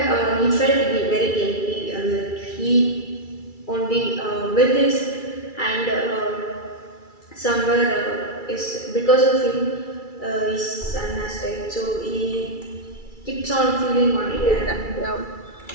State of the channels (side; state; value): right; late; 2.3 ms